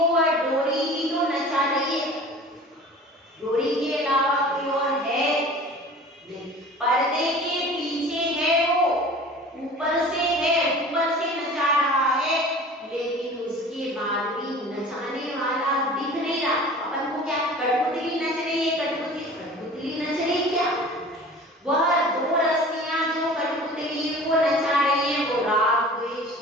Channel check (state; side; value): normal; both; correlation 0.42